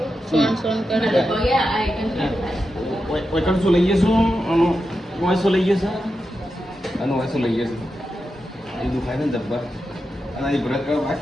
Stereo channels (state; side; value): normal; both; correlation 0.89